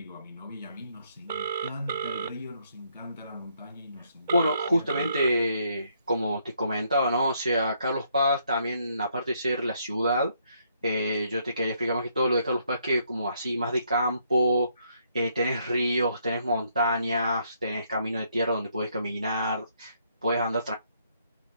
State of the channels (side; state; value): both; inverted; correlation -0.71